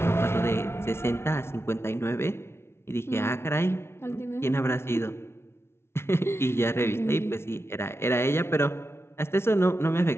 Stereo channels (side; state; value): right; late; 0.12 ms